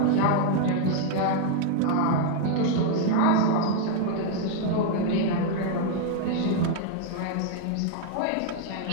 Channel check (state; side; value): different; both; correlation 0.00